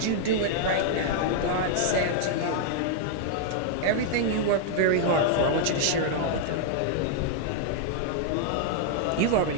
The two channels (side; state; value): both; different; correlation -0.01